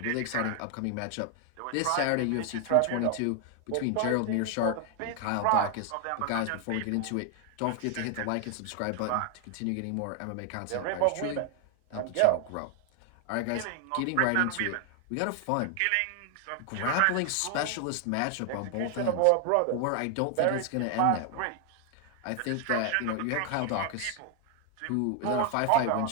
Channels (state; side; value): different; both; correlation 0.00